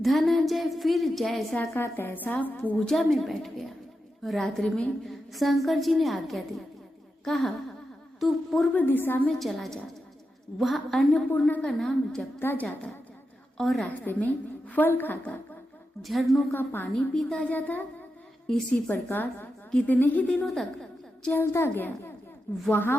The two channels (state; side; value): normal; both; correlation 0.89